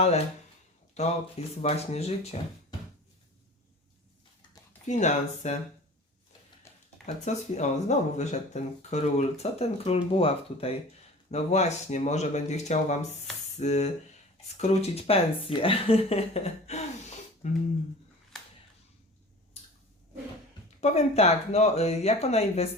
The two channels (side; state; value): both; normal; correlation 0.41